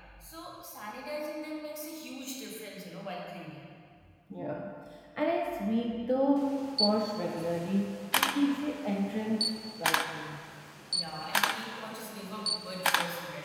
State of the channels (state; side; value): identical; both; correlation 1.00